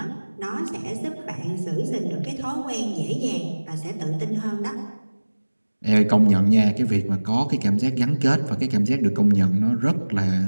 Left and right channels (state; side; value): inverted; both; correlation -1.00